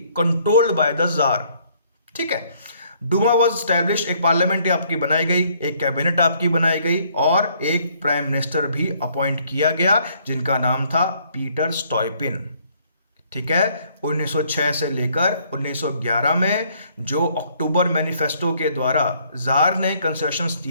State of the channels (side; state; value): both; inverted; correlation -0.65